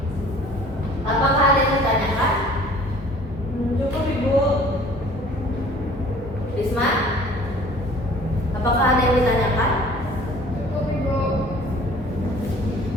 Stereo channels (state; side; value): normal; both; correlation 0.50